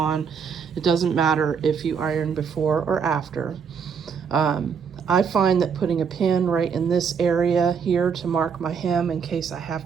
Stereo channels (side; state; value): left; quieter; 6.5 dB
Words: It doesn't matter if you iron before or after. I find that putting a pin right in this area here to mark my hem in case I